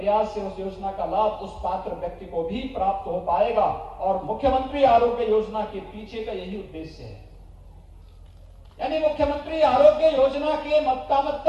से उस योजना का लाभ उस पात्र व्यक्ति को भी प्राप्त हो पाएगा। और मुख्यमंत्री आरोग्य योजना के पीछे का यही उद्देश्य है। यानी मुख्यमंत्री आरोग्य योजना के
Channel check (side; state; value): both; identical; correlation 1.00